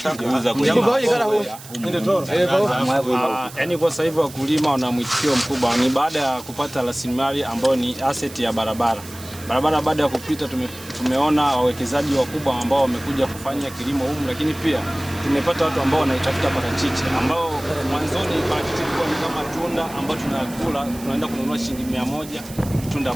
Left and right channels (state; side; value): noise; right; hiss, 17 dB below the sound